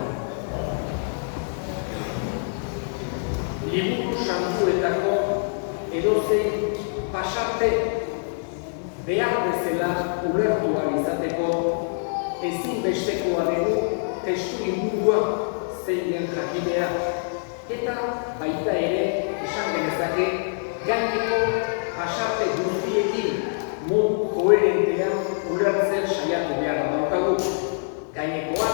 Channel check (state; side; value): silent; right; 62 dB below the other